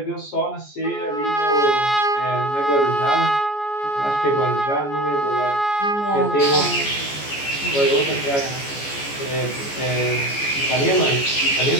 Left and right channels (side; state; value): right; late; 14 ms